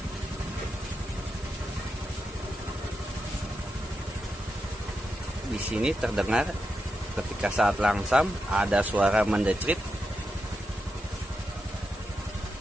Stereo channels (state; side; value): normal; both; correlation 0.87